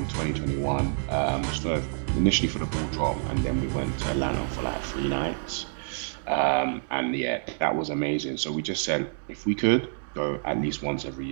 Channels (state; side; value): silent; left; digital silence